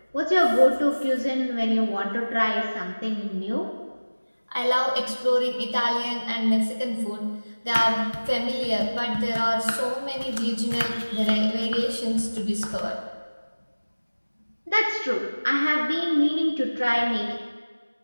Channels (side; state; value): both; inverted; correlation -1.00